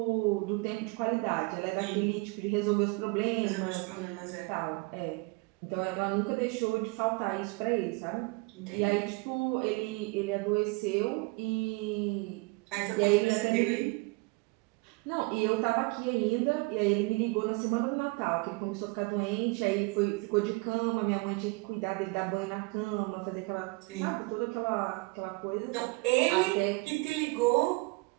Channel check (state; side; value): quieter; left; 27.1 dB